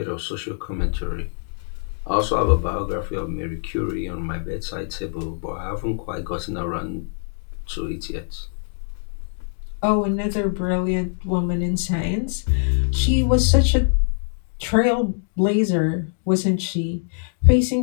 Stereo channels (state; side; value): silent; right; digital silence